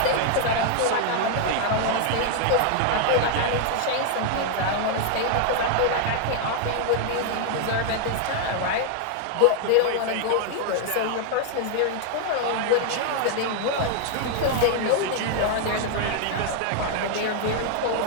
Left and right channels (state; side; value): different; both; correlation 0.00